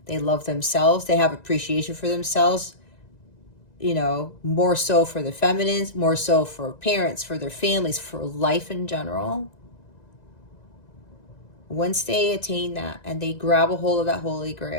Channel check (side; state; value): right; late; 1.9 ms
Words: They love themselves. They have appreciation for themselves, you know, more so for the feminines, more so for parents, for their families, for life in general. Once they attain that and they grab a hold of that Holy